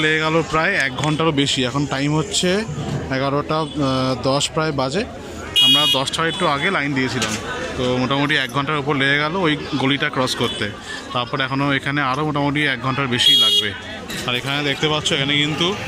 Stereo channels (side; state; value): both; identical; correlation 1.00